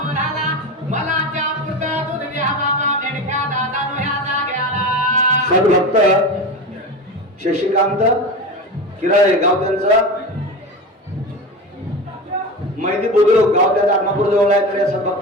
सद्भक्त शशिकांत किराळे गाव त्यांचं मैदी बुद्रुक गाव त्याचा आत्मापूर जवळ आहे. तर या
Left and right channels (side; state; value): both; normal; correlation 0.26